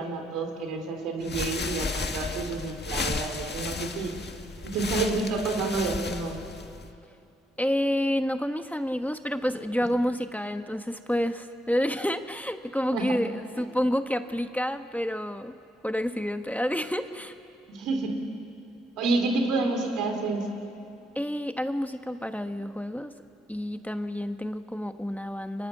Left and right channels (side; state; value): both; normal; correlation 0.78